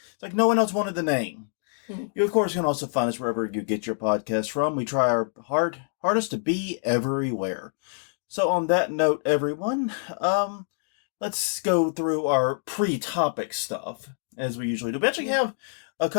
It's like no one else wanted the name. You, of course, can also find us wherever you get your podcast from. We try our hardest to be everywhere. So on that note, everyone, let's go through our pre-topic stuff, as we usually do. We actually have a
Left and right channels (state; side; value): silent; right; digital silence